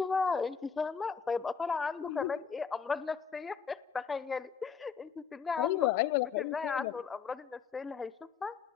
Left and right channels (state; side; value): quieter; right; 6.4 dB